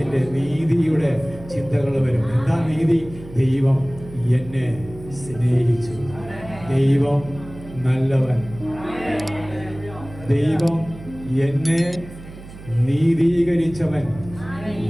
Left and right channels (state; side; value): noise; right; hum, 16 dB below the sound